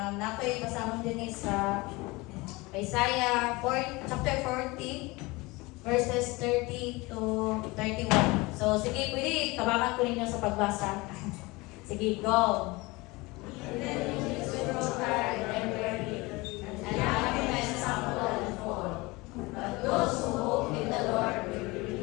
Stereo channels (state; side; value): quieter; right; 23.3 dB